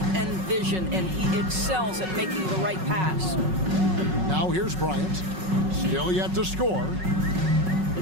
and vision, and he excels at making the right pass. Now here's Bryant. Still yet to score.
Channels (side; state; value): left; late; 5.4 ms